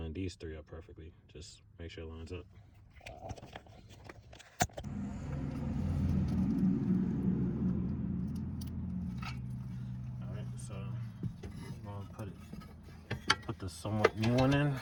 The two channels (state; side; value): identical; both; correlation 1.00